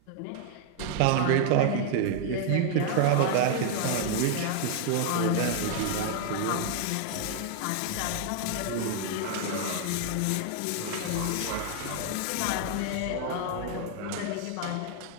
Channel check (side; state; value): both; different; correlation 0.00